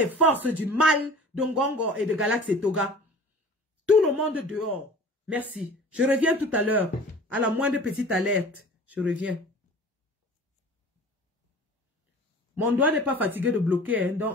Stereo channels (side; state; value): both; normal; correlation 0.43